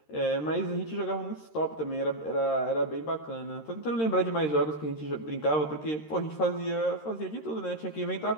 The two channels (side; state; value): right; late; 13 ms